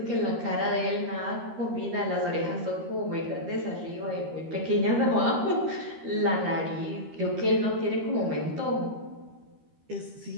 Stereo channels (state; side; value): late; left; 13 ms